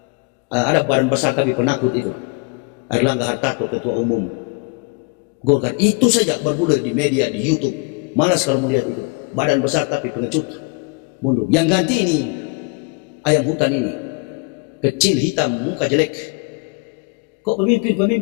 Ada badan besar tapi penakut itu, Erlangga Hartarto, ketua umum Golkar. Itu saja bergulir di media, di YouTube. Malas kalau melihat itu. Badan besar tapi pengecut, mundur. Yang ganti ini ayam hutan ini, kecil, hitam, muka jelek. Kok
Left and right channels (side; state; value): right; quieter; 31.0 dB